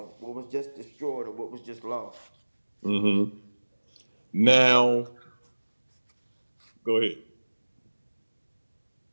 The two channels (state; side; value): inverted; both; correlation -1.00